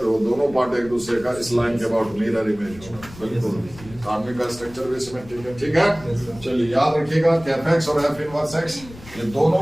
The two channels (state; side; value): noise; left; rumble, 19 dB below the sound